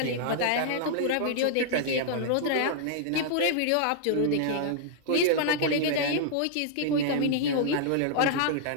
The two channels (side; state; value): both; different; correlation -0.01